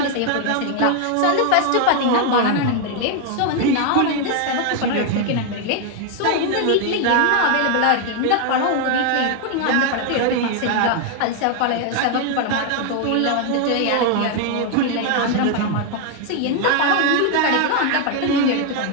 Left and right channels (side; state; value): both; different; correlation 0.01